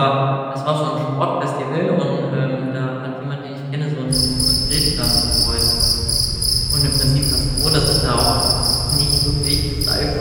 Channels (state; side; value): identical; both; correlation 1.00